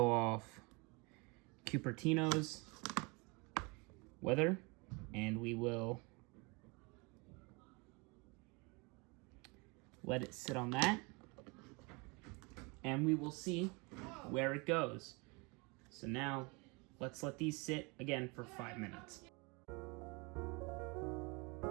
off Cupertino's weather, and we will let it sit on that, and we will see where it goes. So now, let's let these sit again for 5 minutes.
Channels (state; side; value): quieter; left; 28.7 dB